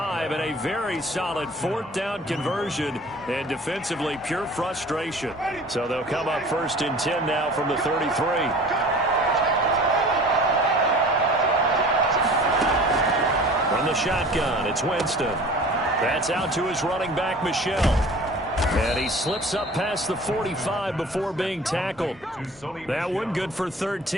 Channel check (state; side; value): normal; both; correlation 0.44